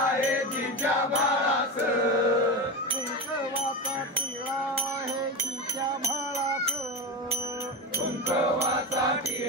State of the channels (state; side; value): normal; both; correlation 0.20